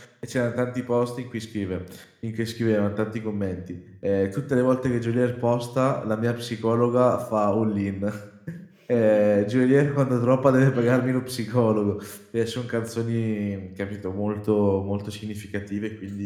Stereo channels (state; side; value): identical; both; correlation 1.00